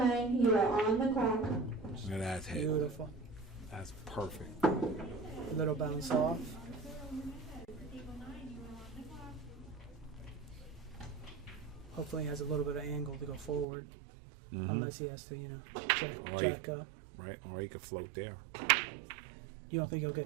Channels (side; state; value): left; drops out; at 13.7 s